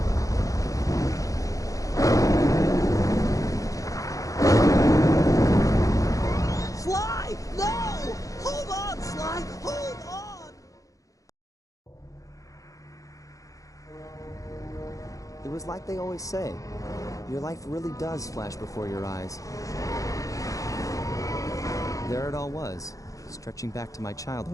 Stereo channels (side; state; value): right; late; 0.16 ms